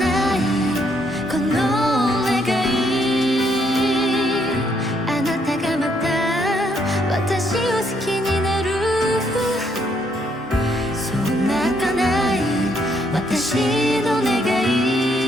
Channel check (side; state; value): both; normal; correlation 0.72